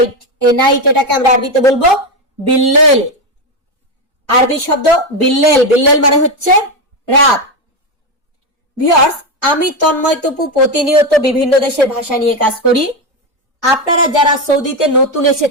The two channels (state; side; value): normal; both; correlation 0.10